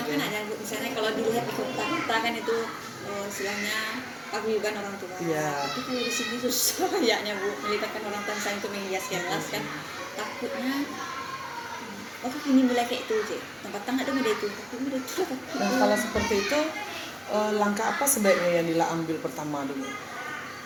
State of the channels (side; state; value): both; identical; correlation 1.00